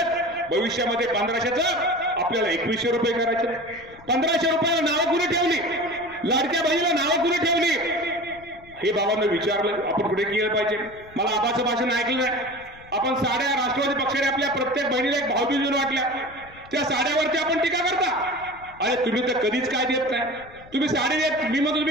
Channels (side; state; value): left; noise; rumble, 23 dB below the sound